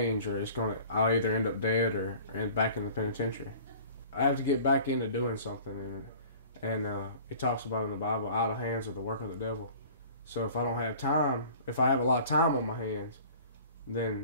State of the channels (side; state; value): both; inverted; correlation -0.46